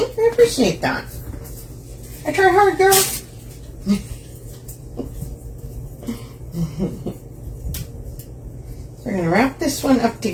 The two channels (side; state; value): both; identical; correlation 1.00